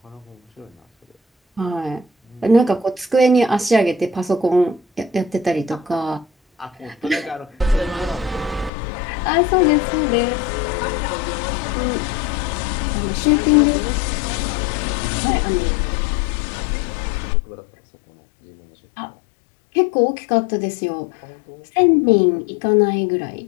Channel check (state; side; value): drops out; right; at 8.7 s